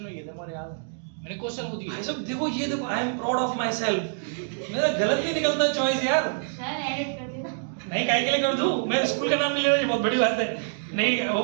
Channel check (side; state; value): left; silent; digital silence